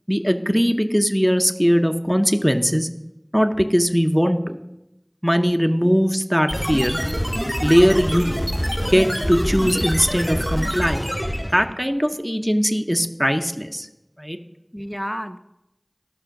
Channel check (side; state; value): both; identical; correlation 1.00